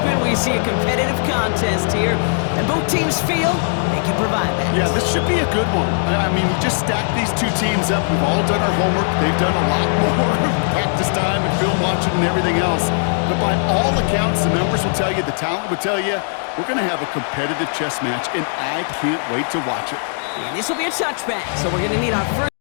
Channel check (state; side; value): silent; right; digital silence